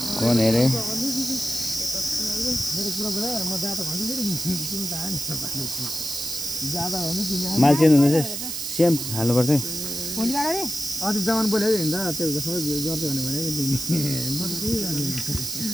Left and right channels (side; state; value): right; noise; hiss, 4 dB below the sound